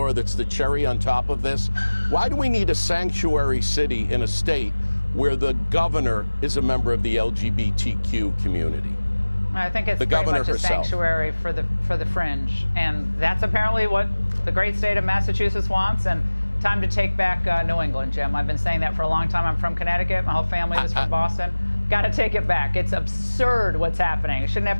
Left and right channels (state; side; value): inverted; both; correlation -1.00